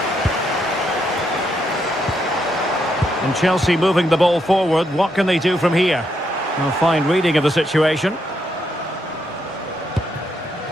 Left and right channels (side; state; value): both; normal; correlation 0.78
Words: And Chelsea moving the ball forward. What can they do from here? A fine reading of the situation.